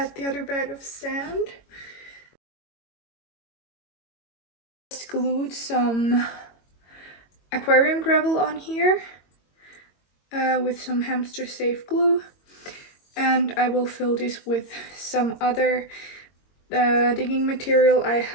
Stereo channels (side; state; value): right; late; 22 ms